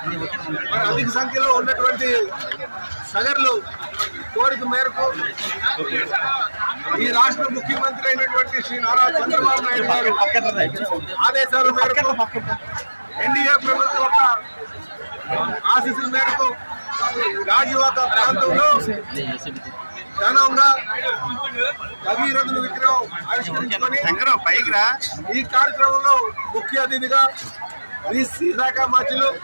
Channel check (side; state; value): both; inverted; correlation -1.00